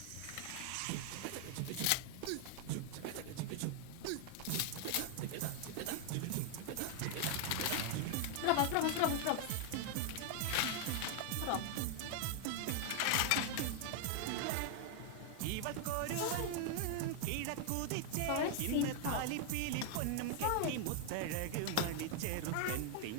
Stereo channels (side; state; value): both; different; correlation 0.00